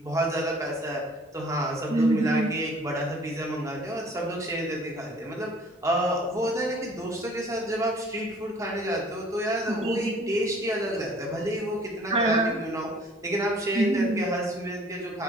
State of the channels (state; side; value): normal; both; correlation 0.54